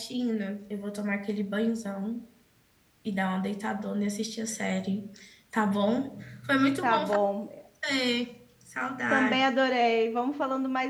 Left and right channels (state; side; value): identical; both; correlation 1.00